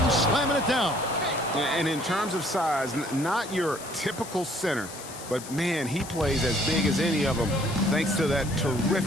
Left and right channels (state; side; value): noise; left; hiss, 13 dB below the sound